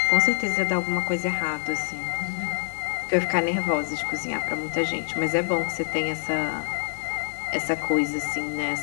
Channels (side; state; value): right; silent; 61 dB below the other